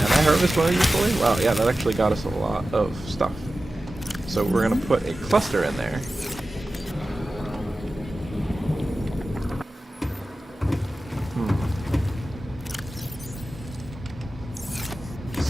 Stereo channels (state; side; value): normal; both; correlation 0.95